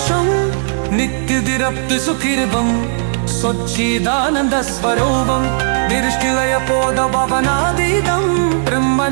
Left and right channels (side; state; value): left; silent; 69 dB below the other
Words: നിത്യതിരപ്തി സുഖിർവം സ്വച്ഛിദാനന്ദ സ്വരൂപം ദൃഷ്ടിലയ പോദ ഭവനാതീതം